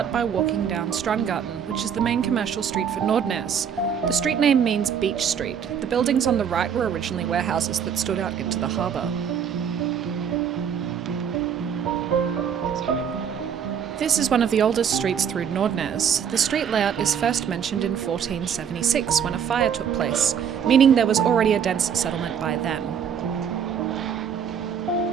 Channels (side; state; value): left; quieter; 7.8 dB